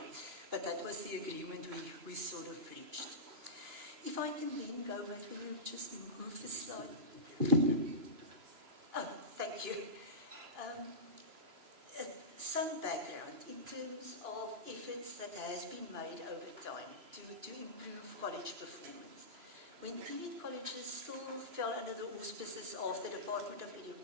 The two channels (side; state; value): left; late; 2.9 ms